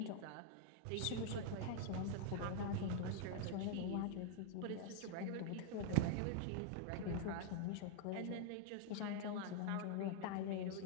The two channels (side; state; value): both; different; correlation 0.00